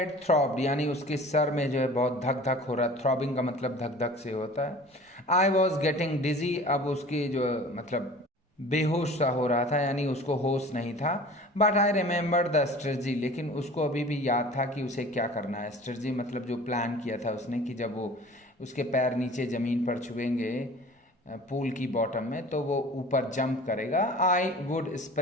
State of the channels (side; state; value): both; normal; correlation 0.43